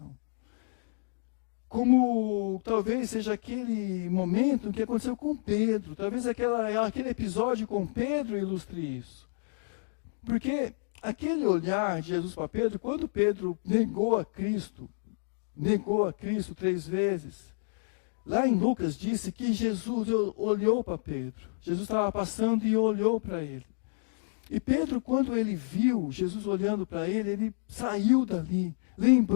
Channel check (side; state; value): right; silent; digital silence